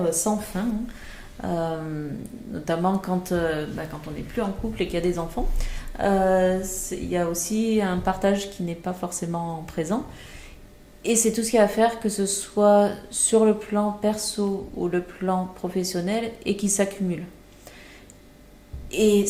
sans fin, hein. Notamment quand on n'est plus en couple et qu'il y a des enfants. Il y a aussi un partage qui n'est pas forcément présent. Et c'est tout ce qu'il y a à faire, que ce soit sur le plan perso ou le plan professionnel, et qui s'accumule. Et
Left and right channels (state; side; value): identical; both; correlation 1.00